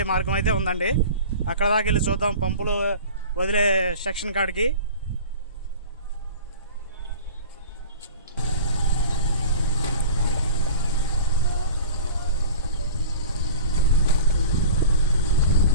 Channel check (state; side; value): inverted; both; correlation -0.39